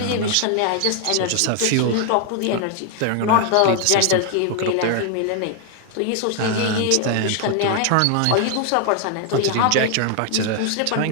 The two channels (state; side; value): different; both; correlation 0.00